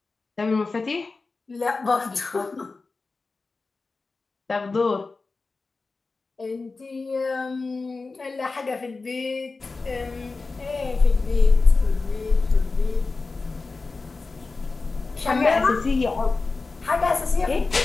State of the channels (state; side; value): quieter; right; 3.9 dB